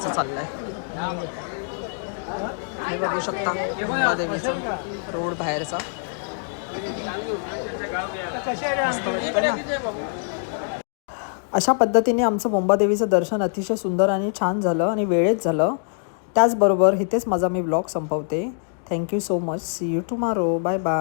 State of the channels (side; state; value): right; silent; digital silence